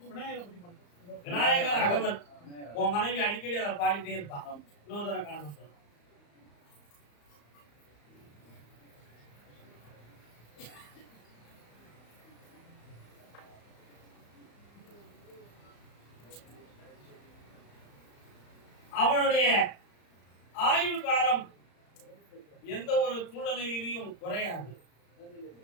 விநாயகர் அகவன். உன் மனைவி அடிக்கடி அதை பாடிட்டே இருப்பான். இன்னொரு தடவை காண அவனுடைய ஆயுள் காலம் எந்த ஒரு சூழ்நிலையிலையும் குறையாது.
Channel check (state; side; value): late; right; 35 ms